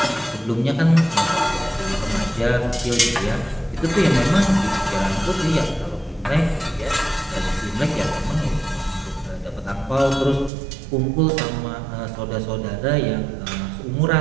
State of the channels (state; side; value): drops out; left; at 10.5 s